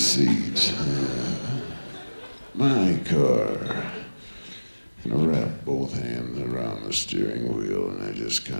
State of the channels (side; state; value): both; inverted; correlation -1.00